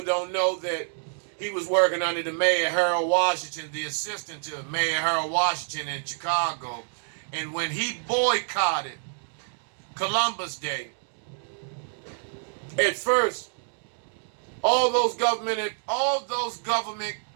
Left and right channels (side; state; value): left; silent; digital silence